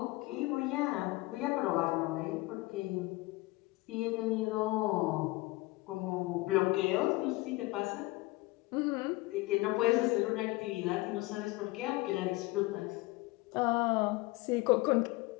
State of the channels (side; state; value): right; quieter; 21.3 dB